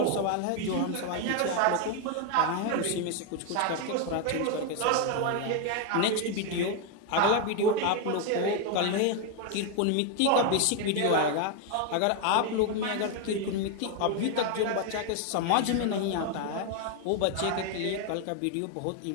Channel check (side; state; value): both; different; correlation 0.01